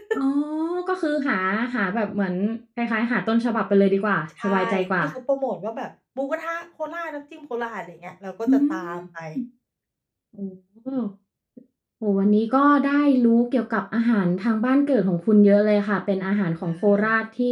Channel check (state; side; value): identical; both; correlation 1.00